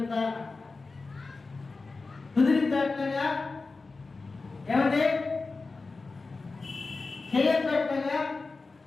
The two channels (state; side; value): quieter; right; 3.9 dB